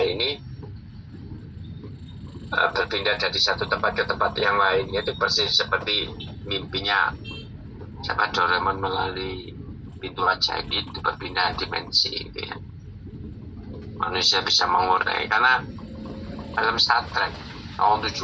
ini berpindah dari satu tempat ke tempat yang lain, yaitu persis seperti mimpinya siapa Doraemon melalui pintu ajaib itu, berpindah dimensi gitu ya. Manusia bisa mengurai, karena film Star Trek tahun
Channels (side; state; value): both; identical; correlation 1.00